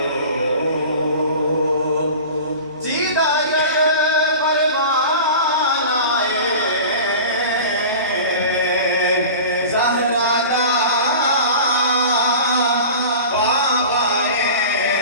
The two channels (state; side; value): inverted; both; correlation -0.36